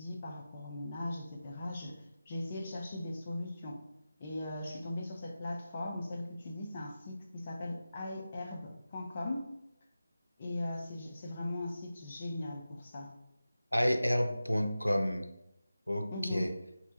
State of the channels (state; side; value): inverted; both; correlation -0.94